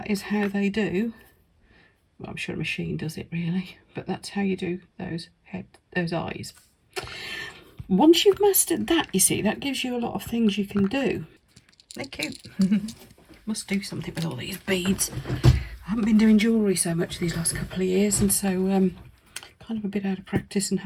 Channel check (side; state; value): both; identical; correlation 1.00